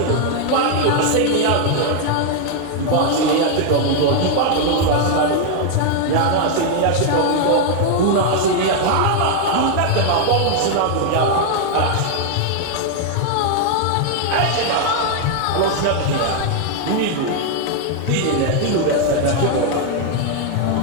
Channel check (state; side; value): different; both; correlation 0.00